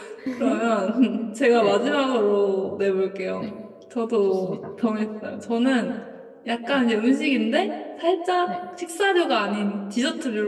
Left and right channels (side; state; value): both; identical; correlation 1.00